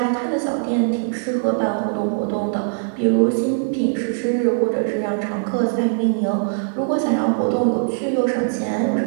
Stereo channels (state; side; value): silent; left; digital silence